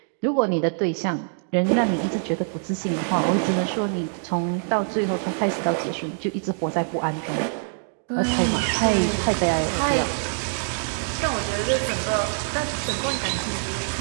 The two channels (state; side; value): silent; left; digital silence